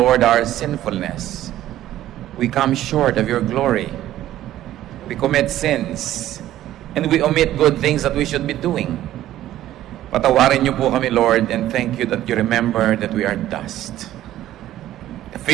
our sinfulness. We come short of your glory. We commit sins and we omit good things that we should be doing. Patawarin niyo po kami, Lord, and thank you that you remember that we are dust.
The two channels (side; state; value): left; quieter; 13.4 dB